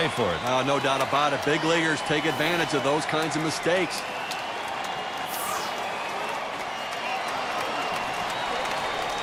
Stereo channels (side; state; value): both; identical; correlation 1.00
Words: for it. No doubt about it. Big leaguers take advantage of those kinds of mistakes.